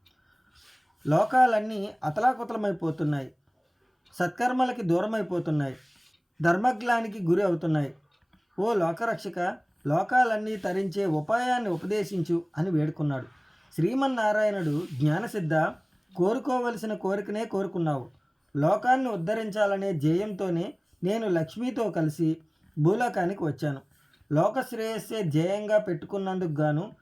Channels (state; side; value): identical; both; correlation 1.00